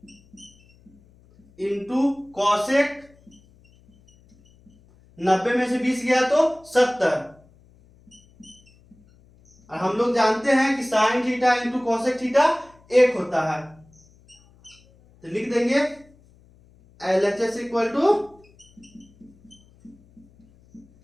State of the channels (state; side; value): noise; left; hum, 29 dB below the sound